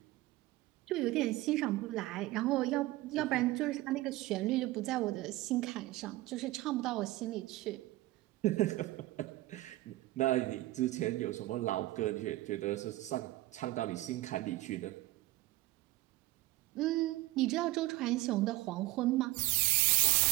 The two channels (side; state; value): left; quieter; 18.2 dB